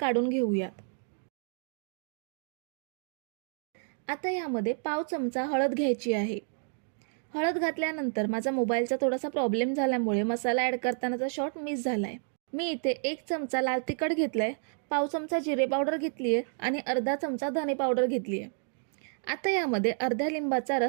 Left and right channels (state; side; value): silent; left; 58 dB below the other